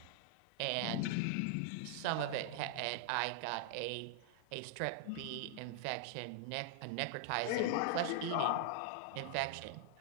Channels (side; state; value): both; different; correlation 0.00